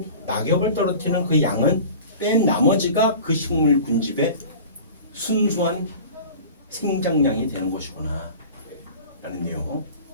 낙엽을 떨어뜨리는 그 양은 뺀 나머지가 그 식물 군집의 순수한 생장량이 되는 것이구나 라는 내용.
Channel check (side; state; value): both; inverted; correlation -0.39